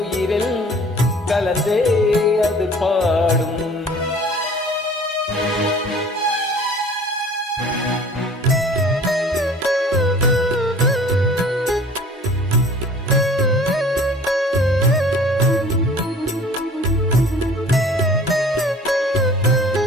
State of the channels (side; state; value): both; normal; correlation 0.48